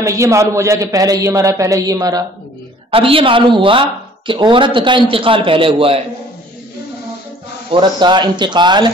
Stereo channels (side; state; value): both; normal; correlation 0.53